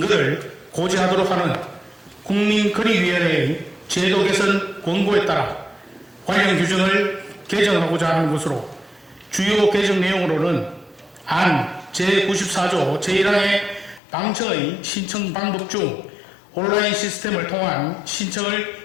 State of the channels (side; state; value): right; drops out; at 14.0 s